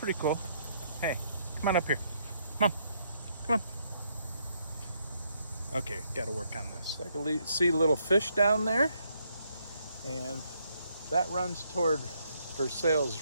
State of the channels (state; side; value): inverted; both; correlation -0.73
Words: cool. Hey, come on up here. Come on. Come on. Okay, got to work on this. I can see little fish down there, and that runs toward Versailles